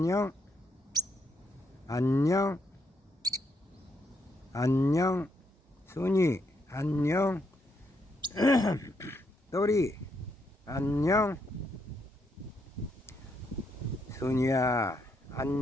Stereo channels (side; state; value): both; normal; correlation 0.77